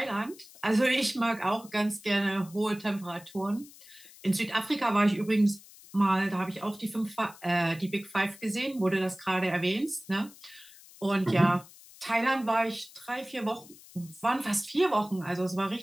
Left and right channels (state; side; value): noise; left; hiss, 21 dB below the sound